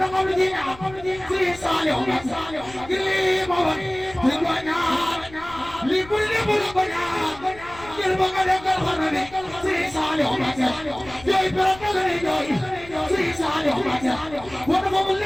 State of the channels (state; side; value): noise; left; rumble, 19 dB below the sound